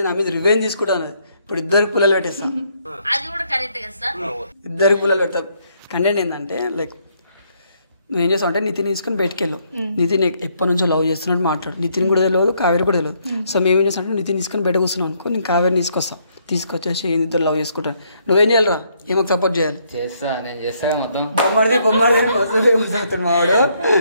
నా మీద రివెంజ్ తీసుకుంటా అన్నది. ఇప్పుడు ఇద్దరికి పిల్లలు పెట్టేస్తాం. ఇద్దరికి పిల్లలు పెడతాం. కంటెంట్ ఏంటంటే లైక్ నువ్వు ఏం చేస్తావు అంటే నితిన్ తీసుకొని బయటకు వెళ్ళావు. నితిన్ ఎప్పటి నుంచో లవ్ చేస్తున్నట్టు మాట్లాడు. నితిన్ కూడా తెలియదు, కావేరి కూడా తెలియదు. సో మేము ఏం చేస్తాం అంటే నితిన్ తీసుకొని బయట కూర్చున్నాం అనుకో, నేను కావేరిని తీసుకొచ్చేసి ఇద్దరు లవ్ చేసుకుంటాను. నువ్వేం చేయాలిరా? ఏమో సపోర్ట్ చేయాలి. నేను చేస్తా మొత్తం. బొమ్మడిది మావాడు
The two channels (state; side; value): inverted; both; correlation -0.71